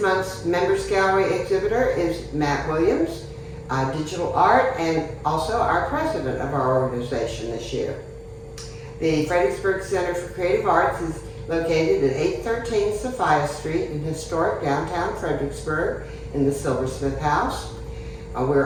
Members Gallery exhibitor is Matt Williams, digital art, and also our president of our organization this year. The Fredericksburg Center for Creative Arts is located at 813 Sophia Street in historic downtown Fredericksburg in the Silversmith House.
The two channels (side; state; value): both; identical; correlation 1.00